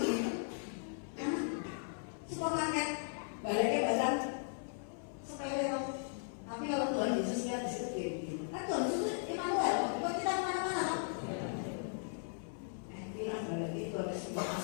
di supermarket. Baliknya badan sepele loh. Tapi kalau Tuhan Yesus lihat di situ gini. Kan Tuhan Yesus Immanuel. Buat kita kemana-mana. Bilang balik itu ada sebuah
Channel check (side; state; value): right; silent; 53 dB below the other